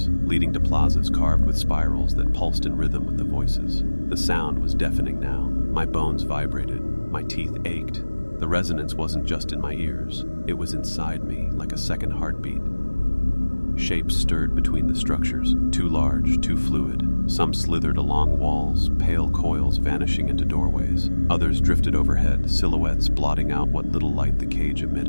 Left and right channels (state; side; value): inverted; both; correlation -1.00